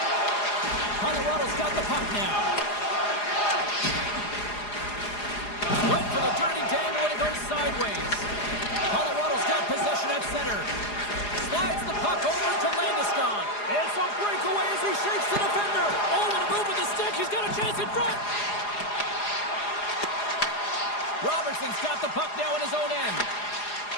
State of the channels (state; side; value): late; right; 4.8 ms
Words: Colorado's got the puck now. Went for the dirty dangle and it goes sideways. Colorado's got possession at center. Slides the puck over to Landeskog. It's a breakaway as he shakes the defender. Oh, what a move with the stick. He's got a chance in front. Robertson's got the puck now in his own end.